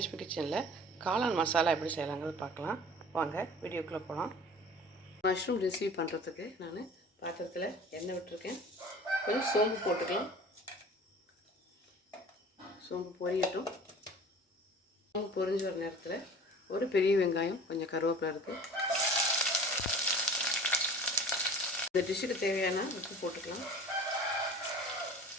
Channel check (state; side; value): normal; both; correlation 0.43